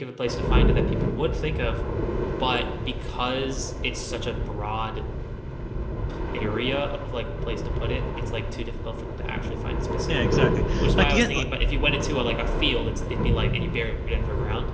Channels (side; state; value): both; identical; correlation 1.00